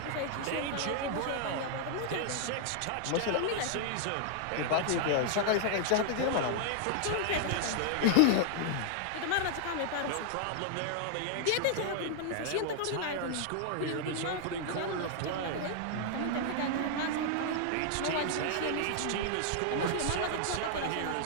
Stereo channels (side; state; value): both; different; correlation -0.01